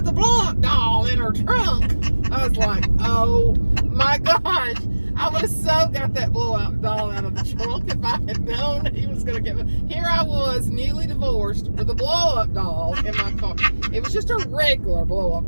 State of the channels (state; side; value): inverted; both; correlation -1.00